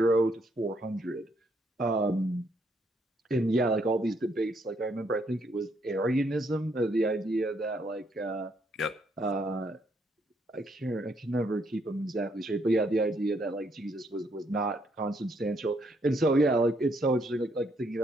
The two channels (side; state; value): both; normal; correlation 0.72